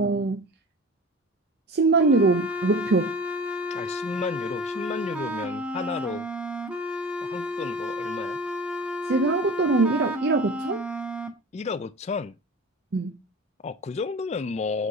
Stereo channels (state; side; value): normal; both; correlation 0.37